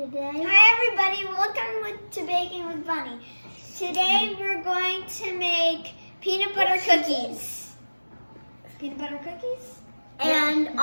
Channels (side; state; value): both; inverted; correlation -1.00